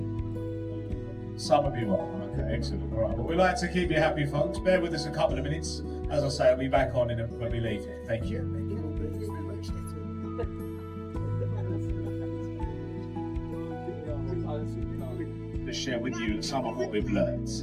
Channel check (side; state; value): both; identical; correlation 1.00